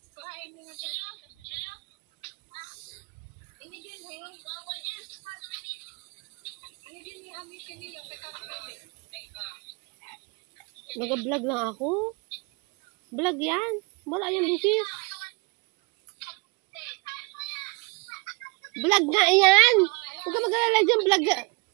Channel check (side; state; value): left; quieter; 29.4 dB